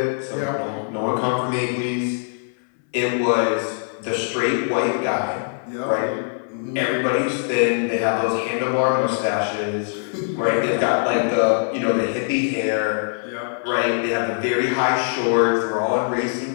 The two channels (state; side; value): silent; right; 64 dB below the other